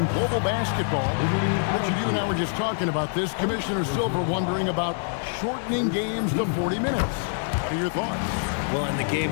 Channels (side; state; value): right; silent; digital silence